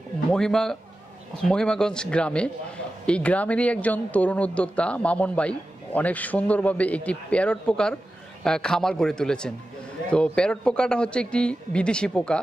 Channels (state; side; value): normal; both; correlation 0.93